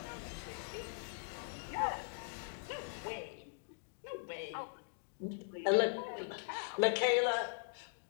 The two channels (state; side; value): silent; right; digital silence